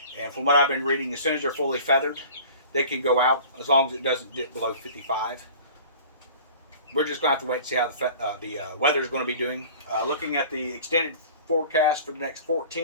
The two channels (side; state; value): both; inverted; correlation -0.44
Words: And from what I've been reading, as soon as they're fully feathered, they can go out as long as it doesn't dip below 55. We're just going to have to wait and see how the weather is going to be doing. Looking at the extended forecast for the next